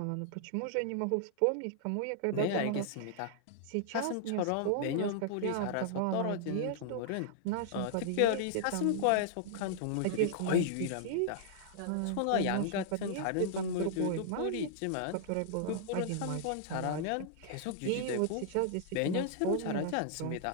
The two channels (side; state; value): both; different; correlation -0.01